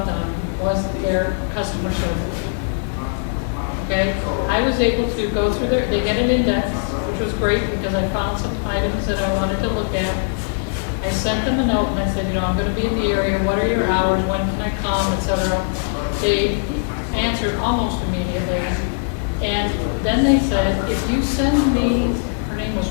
them was their customer service. Okay, I was able to go through they get an index, which was great because I found some items that I wanted to look at. I sent them a note and I said, I'm going to be in the area, what are your hours, when can I come, etc. They answered almost immediately. And then they said, if you send me, her name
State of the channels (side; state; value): right; silent; digital silence